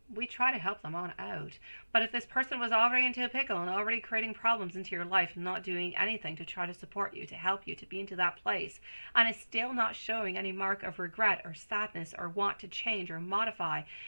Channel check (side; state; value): both; inverted; correlation -1.00